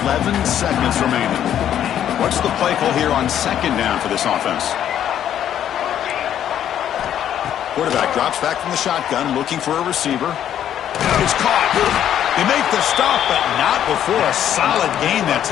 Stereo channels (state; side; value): quieter; right; 10.3 dB